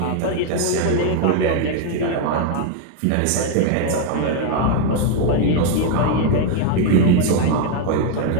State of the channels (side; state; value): both; different; correlation 0.00